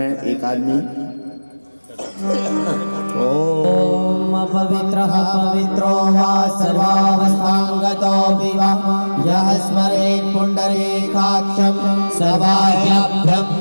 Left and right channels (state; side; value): inverted; both; correlation -1.00